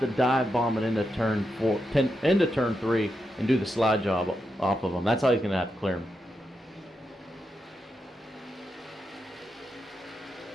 dive bomb it into turn 3 and do the slide job off of him. That's how he's going to have to clear him.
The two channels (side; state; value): both; normal; correlation 0.86